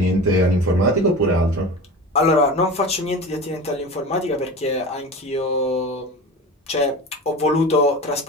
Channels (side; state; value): both; normal; correlation 0.32